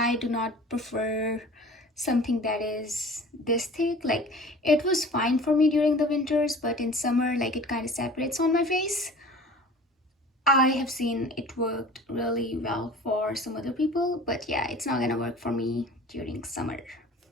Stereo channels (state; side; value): normal; both; correlation 0.43